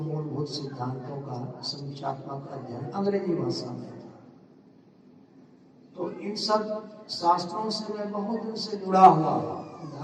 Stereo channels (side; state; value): both; identical; correlation 1.00